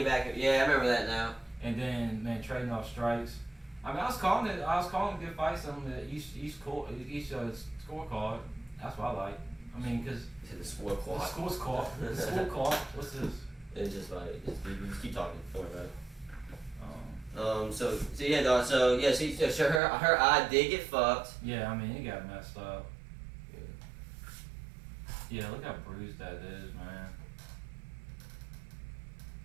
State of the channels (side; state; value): left; drops out; at 19.8 s